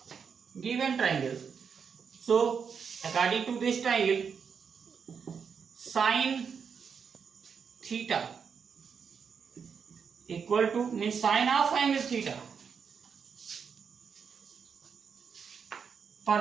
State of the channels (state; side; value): quieter; left; 6.5 dB